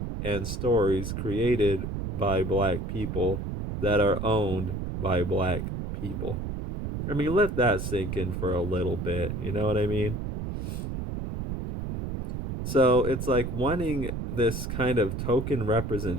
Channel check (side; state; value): right; noise; rumble, 4 dB below the sound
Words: and stories created by black people that are owned by black people. I mean, let that sink in for a little bit. You know what I mean? So it's like wanting this kind of token